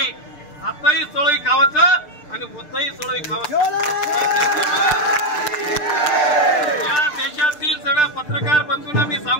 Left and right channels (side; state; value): right; late; 6.7 ms